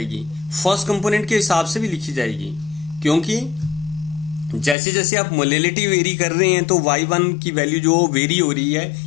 फर्स्ट कंपोनेंट के हिसाब से भी लिखी जाएगी. क्योंकि जैसे जैसे आप मोलैलिटी वेरी कर रहे हैं तो y1 की वैल्यू जो वेरी हो रही है,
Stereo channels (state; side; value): drops out; right; at 4.8 s